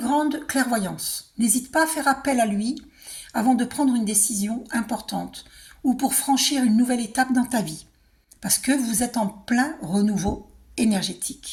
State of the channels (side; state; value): both; identical; correlation 1.00